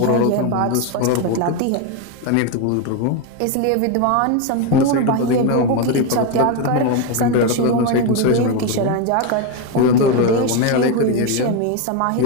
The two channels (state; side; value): different; both; correlation 0.02